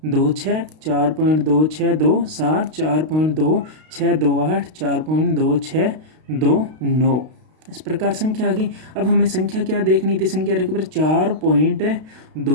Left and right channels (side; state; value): left; late; 32 ms